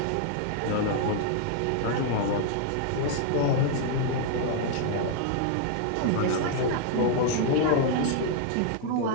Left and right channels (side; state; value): both; different; correlation -0.01